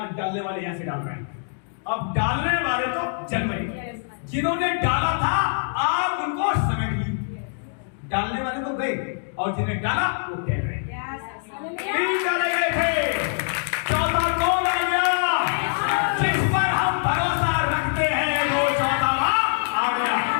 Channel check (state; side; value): silent; right; digital silence